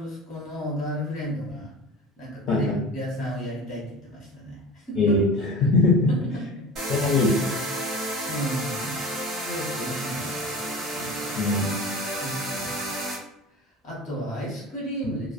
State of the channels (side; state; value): both; normal; correlation 0.35